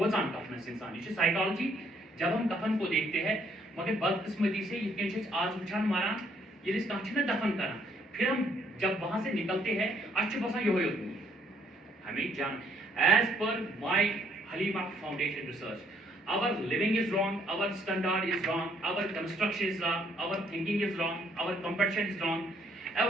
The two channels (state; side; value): normal; both; correlation 0.67